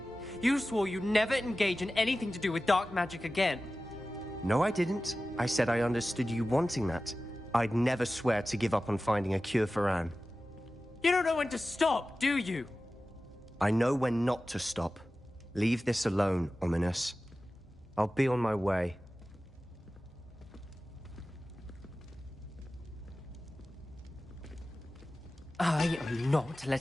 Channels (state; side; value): normal; both; correlation 0.95